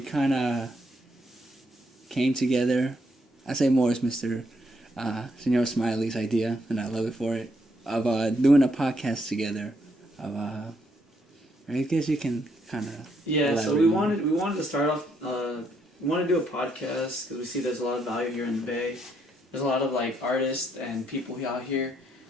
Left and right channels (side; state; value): both; normal; correlation 0.74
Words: kind of came together. I say more as Mr. Señor Smiley's idea, and I love it for it, of doing a podcast together. I guess you can kind of... Yeah, so we wanted to start off, we want to do a podcast because we see there's a lot of value here in the Bay. There's a lot of artists and people out here